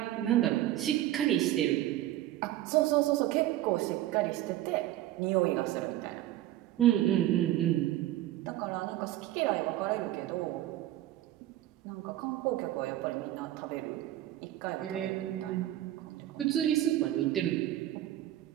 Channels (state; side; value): quieter; left; 14.1 dB